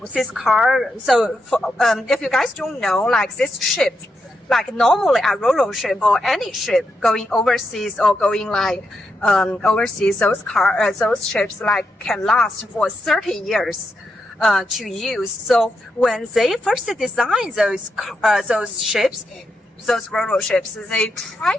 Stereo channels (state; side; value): normal; both; correlation 0.84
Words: this car. So if you guys don't know, like this ship, like normally a Ro-Ro ship or any ship going overseas or going like overseas, those ships like can last for 30 years. To use. So when they first designed those ships, those Ro-Ro ships, they try